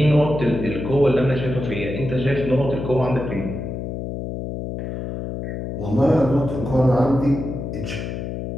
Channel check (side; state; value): left; noise; hum, 6 dB below the sound